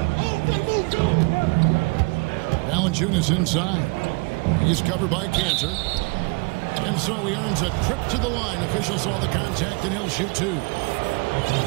Valanciunas inside. He's covered by Cantor. And so he earns a trip to the line. Officials saw the contact, and he'll shoot 2.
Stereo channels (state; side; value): quieter; left; 30.3 dB